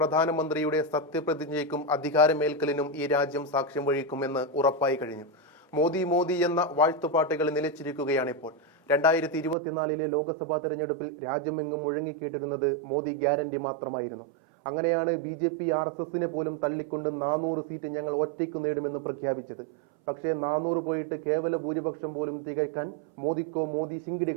സത്യപ്രതിജ്ഞയ്ക്കും അധികാരമേൽക്കലിനും ഈ രാജ്യം സാക്ഷ്യം വഹിക്കുമെന്ന് ഉറപ്പായി കഴിഞ്ഞു. മോദി മോദി എന്ന വാഴ്ത്തുപാട്ടുകൾ നിലച്ചിരിക്കുകയാണിപ്പോൾ. 2024 ലോക്സഭാ തെരഞ്ഞെടുപ്പിൽ രാജ്യമെങ്ങും മുഴങ്ങിക്കേട്ടിരുന്നത് മോദി ഗ്യാരണ്ടി മാത്രമായിരുന്നു. അങ്ങനെയാണ് BJP RSSനെ പോലും തള്ളിക്കൊണ്ട് 400 സീറ്റ് ഞങ്ങൾ ഒറ്റയ്ക്ക് നേടുമെന്ന് പ്രഖ്യാപിച്ചത്. പക്ഷേ 400 പോയിട്ട് കേവല ഭൂരിപക്ഷം പോലും തികയ്ക്കാൻ മോദിക്കോ മോദി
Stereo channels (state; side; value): drops out; left; at 9.6 s